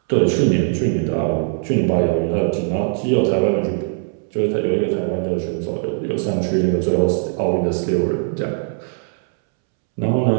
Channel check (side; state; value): left; silent; 66 dB below the other